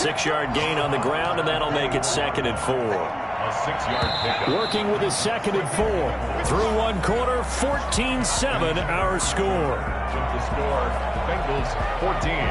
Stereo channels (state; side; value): identical; both; correlation 1.00